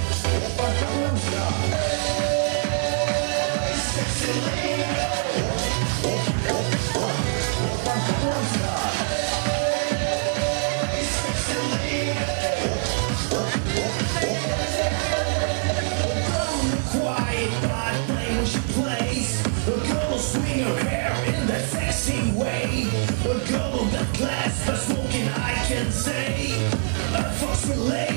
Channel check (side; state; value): left; silent; digital silence